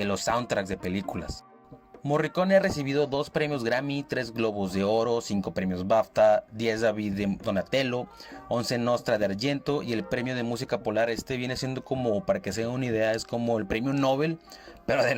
soundtracks de películas. Morricone ha recibido 2 premios Grammy, 3 Globos de Oro, 5 premios BAFTA, 10 David de Donatello, 11 Nostra de Argento, y el premio de música Polar. Este viene siendo como, para que se den una idea, es como el premio Nobel, pero de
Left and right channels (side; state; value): both; identical; correlation 1.00